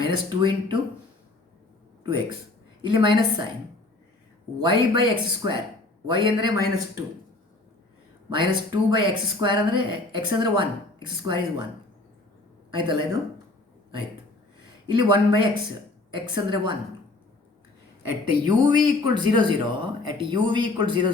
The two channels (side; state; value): right; quieter; 3.0 dB